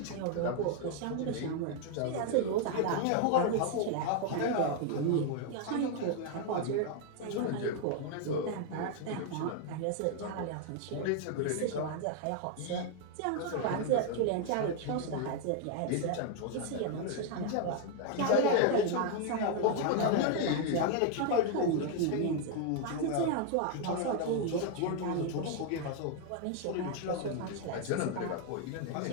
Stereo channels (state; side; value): different; both; correlation 0.00